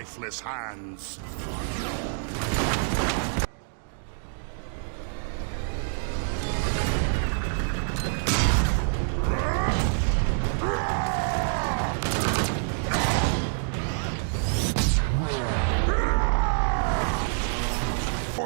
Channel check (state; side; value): silent; left; digital silence